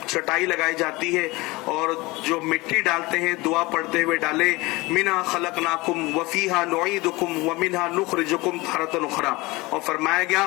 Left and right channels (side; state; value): right; quieter; 22.3 dB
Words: चटाई लगाई जाती है और जो मिट्टी डालते हैं दुआ पढ़ते हुए डाले, मिना खलकनाकुम वफीहा नुईदुकुम व मिनहा नुखरिजुकुम तारतन उखरा। और फरमाया गया